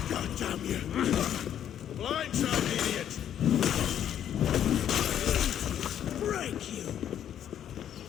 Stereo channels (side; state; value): right; quieter; 10.0 dB